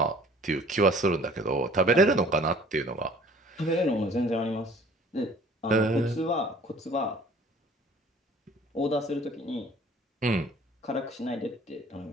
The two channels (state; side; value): normal; both; correlation 0.51